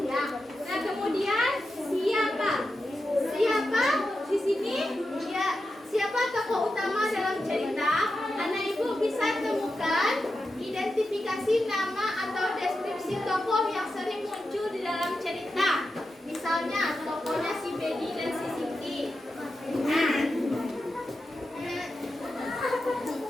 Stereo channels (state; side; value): normal; both; correlation 0.89